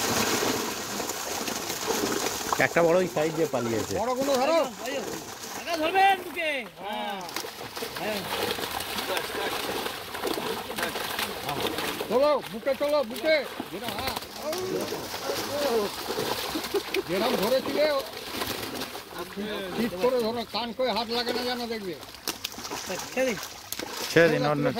একটা বড় ওই সাইড দিয়ে পালিয়েছে। বড়গুলো ধরো, ধরবেন বুকে। হ্যাঁ চলো বুকে, চলো বুকে। যেরকম ধরেছিলে ঠিক করে ধরো, কান করে হাত লাগে না যেন, দেখবে। ছেড়ে দিন, অন্য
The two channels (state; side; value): identical; both; correlation 1.00